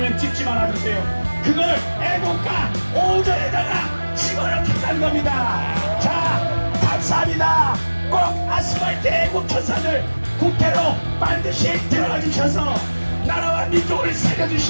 찍지 말아주세요. 그걸 애국가 5절에다가 집어넣겠다는 겁니다. 자 감사합니다. 꼭 아스팔트 애국 천사들 국회로 반드시 들어가 주셔서 나라와 민족을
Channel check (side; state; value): both; inverted; correlation -1.00